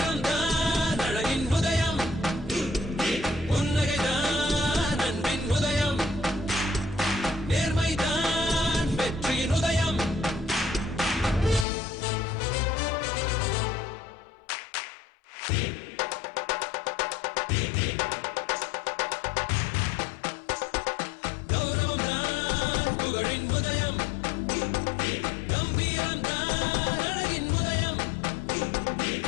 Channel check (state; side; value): drops out; right; at 11.7 s